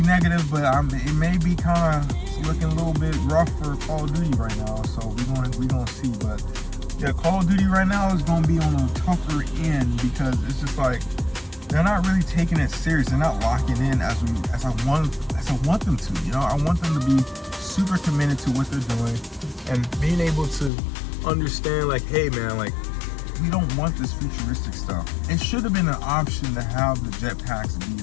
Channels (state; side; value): drops out; right; at 20.7 s